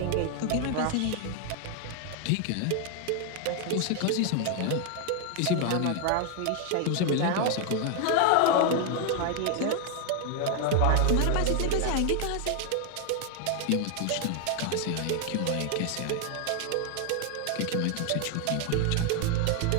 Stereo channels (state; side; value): different; both; correlation 0.00